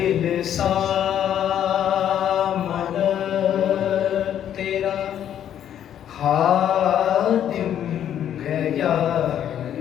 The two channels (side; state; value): right; quieter; 10.2 dB